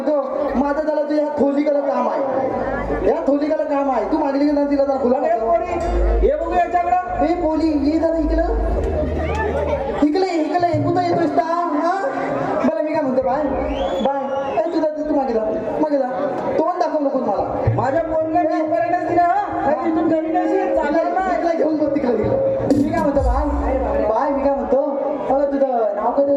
माझं त्याला तुझ्या थोलीकडे काम आहे या थोलीकडे काम आहे तू मागली की नाही तिला जरा फुला हे बघू याच्याकडं हे पोली ये जरा इकडं इकडे कुठं येतोस का हा बरं मी काय म्हणतो बाय बाय ए तुझा तू मागे जा तोंड दाखव नको मला माझ्या पोरला मी पर्यटन दिला हा तिथून घरी नाही चालेल ना ऐकला घेऊन बघ तिकडे मी काय म्हणतो बाय मी काय म्हणतो अगं तुझं नाव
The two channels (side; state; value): both; identical; correlation 1.00